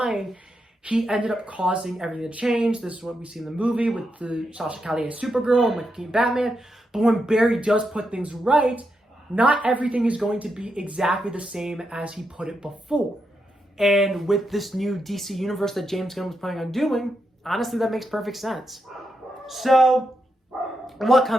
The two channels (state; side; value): normal; both; correlation 0.84